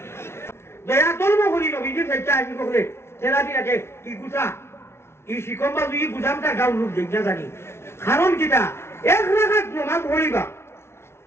দয়া ধর্ম করি নবীজির ফেলতে আসি করে তেরাদি রাখে ই গুছা ই শিকম্বা দুই গুছামটা গাও লোক দেখনা জানি কারণ কিটা 1 রাকাত নামাজ পড়িবা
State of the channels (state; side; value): late; right; 0.12 ms